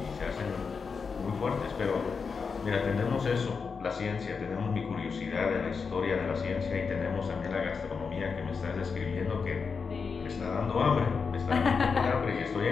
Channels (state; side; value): quieter; right; 5.4 dB